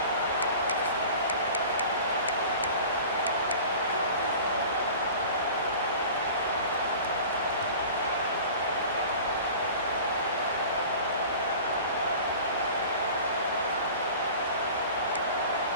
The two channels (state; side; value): inverted; both; correlation -0.40